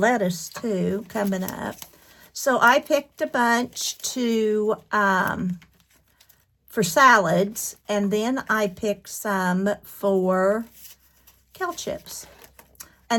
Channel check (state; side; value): identical; both; correlation 1.00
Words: too coming up. So I picked a bunch for salads, and then I picked some for kale chips,